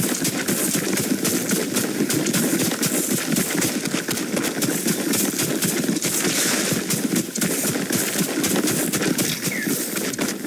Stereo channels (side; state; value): both; identical; correlation 1.00